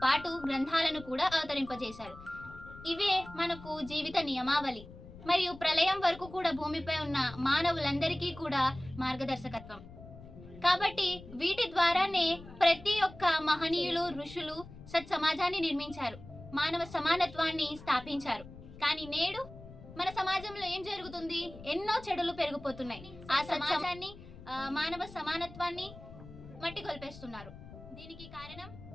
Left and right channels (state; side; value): noise; left; rumble, 17 dB below the sound